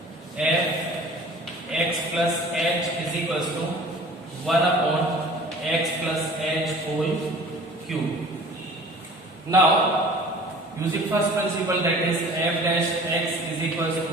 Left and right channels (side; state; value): both; normal; correlation 0.46